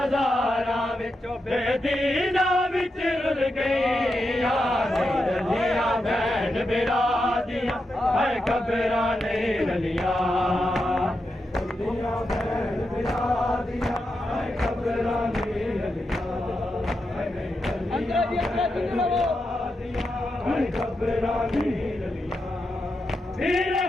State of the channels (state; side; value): normal; both; correlation 0.86